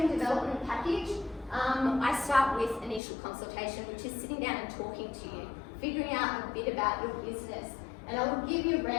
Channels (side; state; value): right; drops out; at 3.0 s